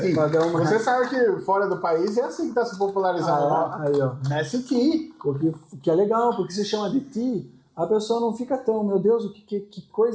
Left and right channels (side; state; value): both; identical; correlation 1.00